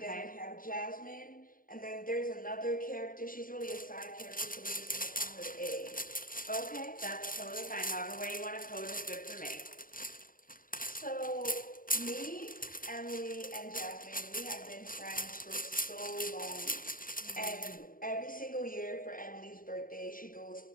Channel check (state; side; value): late; right; 0.41 ms